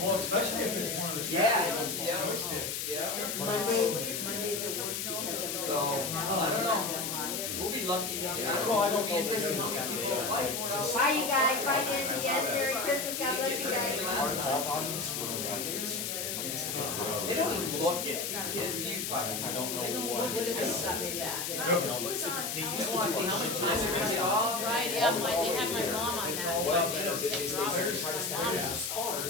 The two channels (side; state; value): left; noise; hiss, 3 dB below the sound